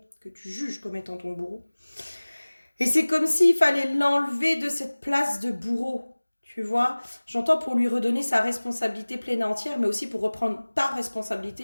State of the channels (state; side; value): inverted; both; correlation -1.00